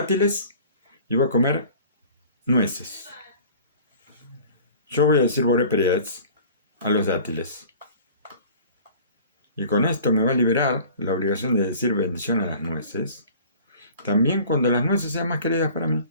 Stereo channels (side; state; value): both; inverted; correlation -0.46